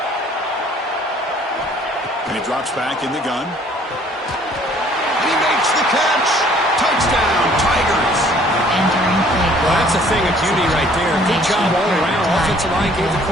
And he drops back in the gun. He makes the catch. Touchdown, Tigers. Well, that's a thing of beauty right there. Good job all around. Offensive line gave the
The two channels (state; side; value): normal; both; correlation 0.57